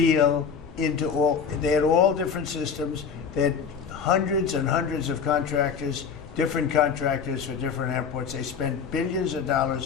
they had all different systems. They had hundreds and hundreds of contractors, different contractors for different airports. They spent billions of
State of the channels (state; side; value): quieter; right; 6.3 dB